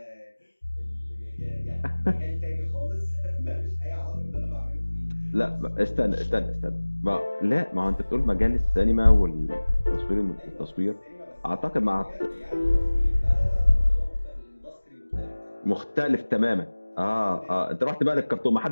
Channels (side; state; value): both; inverted; correlation -1.00